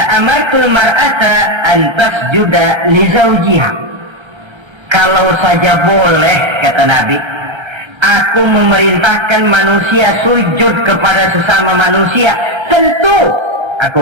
amartul mar'ata an tasjuda li zawjiha." Kalau saja boleh, kata Nabi, aku memerintahkan manusia sujud kepada sesama manusia, tentu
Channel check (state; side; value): late; left; 1.3 ms